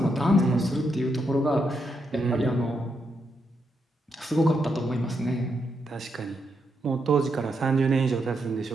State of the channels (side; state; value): both; normal; correlation 0.81